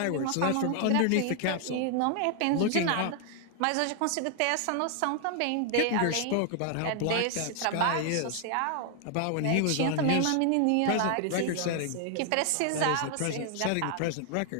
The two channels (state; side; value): different; both; correlation 0.00